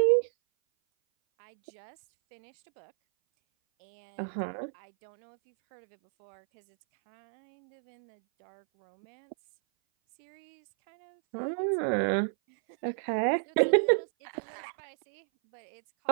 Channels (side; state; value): left; silent; 57 dB below the other